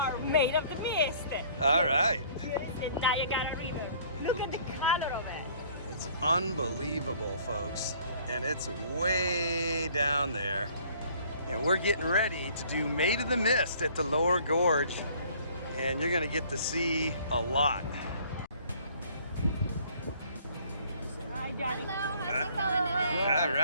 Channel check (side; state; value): both; inverted; correlation -0.56